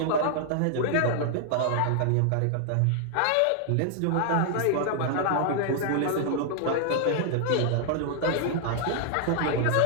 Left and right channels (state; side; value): different; both; correlation 0.00